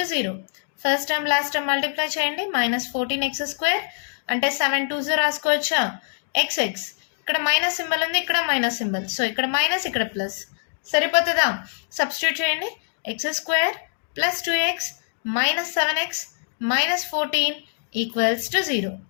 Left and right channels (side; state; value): right; silent; digital silence